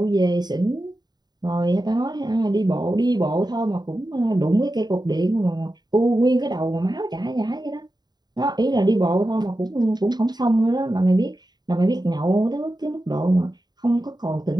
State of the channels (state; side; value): late; left; 0.20 ms